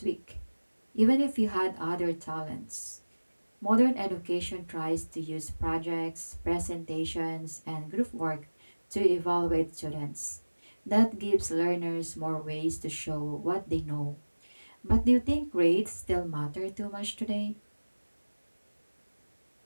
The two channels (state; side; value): inverted; both; correlation -1.00